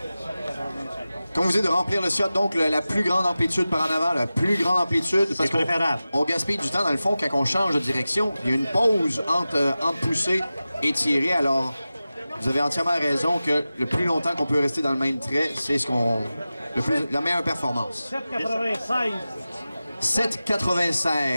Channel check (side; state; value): both; inverted; correlation -0.95